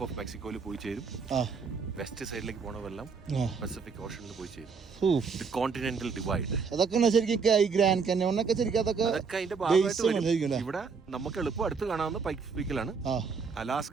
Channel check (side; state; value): left; quieter; 5.3 dB